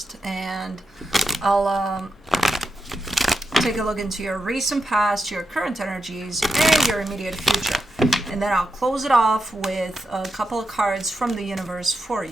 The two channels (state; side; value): normal; both; correlation 0.86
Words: And I'll take a look into your recent past, your current energies, and your immediate future. And then I'll close it off with a couple of cards from the universe for